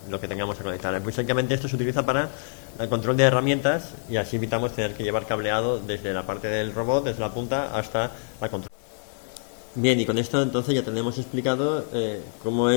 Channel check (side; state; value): right; silent; digital silence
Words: que tengamos que conectar. Básicamente esto se utiliza para el control de herramientas, y así evitamos tener que llevar cableado desde la parte del robot, desde la punta hasta la control. Bien, y con esto entonces ya tenemos explicado cómo